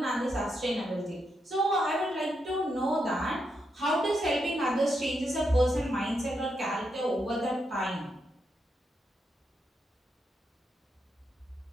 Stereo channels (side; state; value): both; normal; correlation 0.82